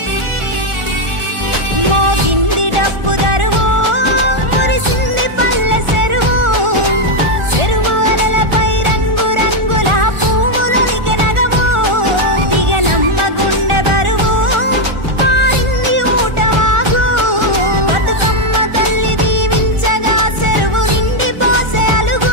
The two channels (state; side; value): late; left; 1.4 ms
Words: మోగింది డప్పు దరువు మురిసింది పల్లె చెరువు చెరువు అలలపై రంగు రంగుల పువ్వులొలికె నగవు దిగనమ్మ గుండె బరువు పారింది ఊటవాగు బతుకమ్మ తల్లి దీవించగా చెరువు నిండి పోసే